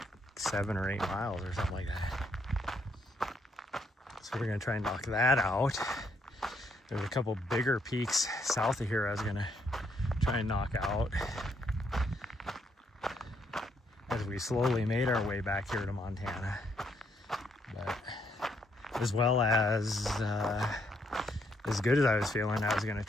7 or 8 miles or something like that. So we're gonna try and knock that out. There's a couple bigger peaks south of here I was gonna try and knock out as we slowly made our way back here to Montana. But as well as good as I was feeling, I was gonna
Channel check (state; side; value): normal; both; correlation 0.73